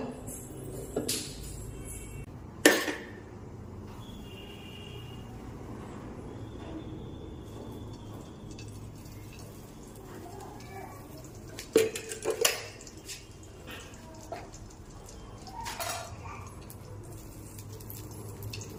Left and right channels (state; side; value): identical; both; correlation 1.00